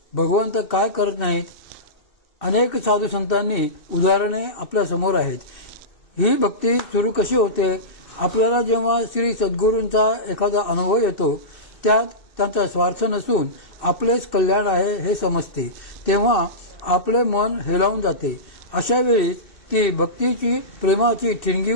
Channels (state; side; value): late; right; 2.3 ms